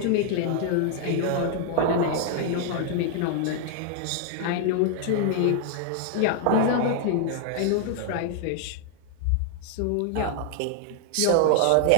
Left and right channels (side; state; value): both; different; correlation -0.01